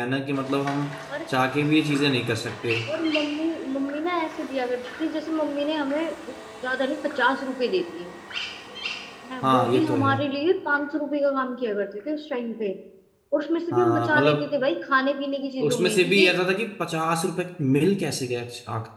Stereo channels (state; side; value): identical; both; correlation 1.00